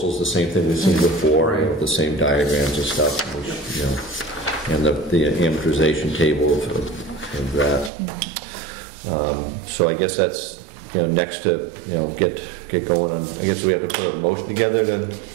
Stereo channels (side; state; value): left; drops out; at 7.9 s